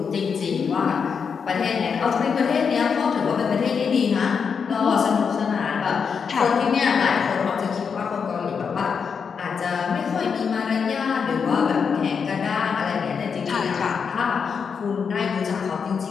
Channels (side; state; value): right; quieter; 6.2 dB